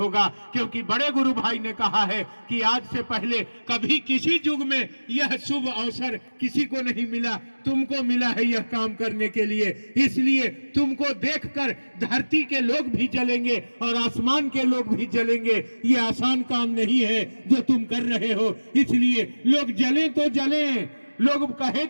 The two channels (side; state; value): both; inverted; correlation -1.00